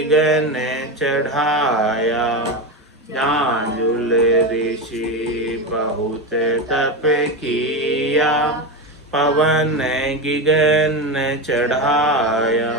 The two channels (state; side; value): normal; both; correlation 0.17